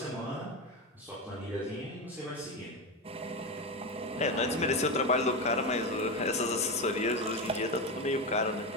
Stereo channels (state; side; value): normal; both; correlation 0.16